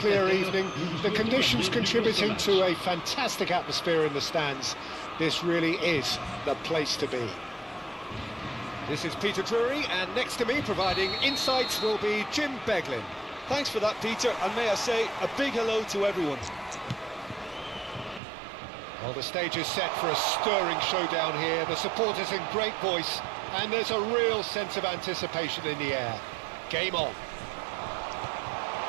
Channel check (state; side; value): drops out; left; at 18.2 s